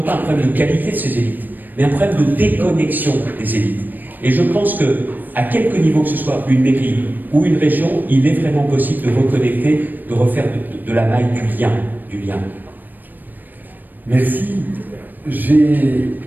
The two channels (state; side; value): late; left; 0.089 ms